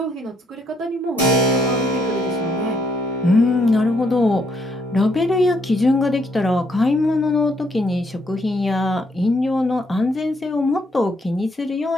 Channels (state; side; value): normal; both; correlation 0.72